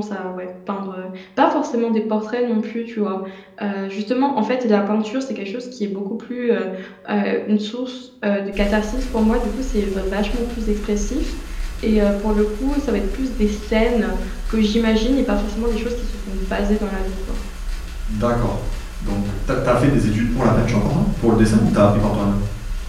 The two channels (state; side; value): identical; both; correlation 1.00